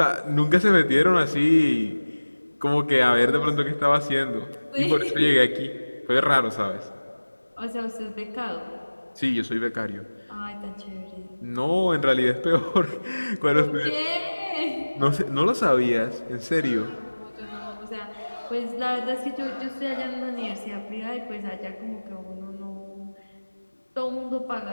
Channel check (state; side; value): inverted; both; correlation -1.00